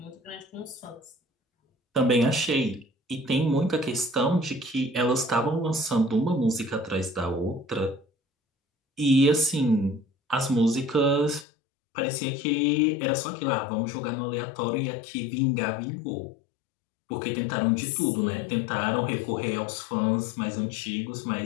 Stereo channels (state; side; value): drops out; right; at 11.5 s